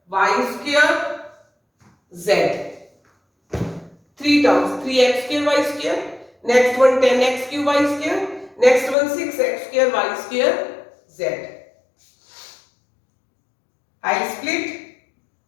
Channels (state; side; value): drops out; right; at 9.0 s